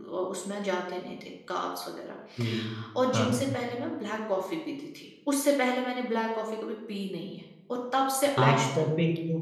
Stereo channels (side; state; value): both; identical; correlation 1.00